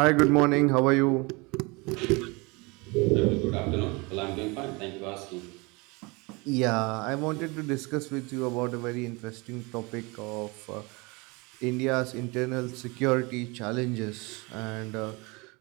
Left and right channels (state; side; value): quieter; left; 26.9 dB